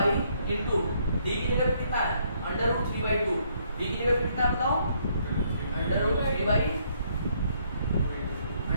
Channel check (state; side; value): inverted; both; correlation -0.69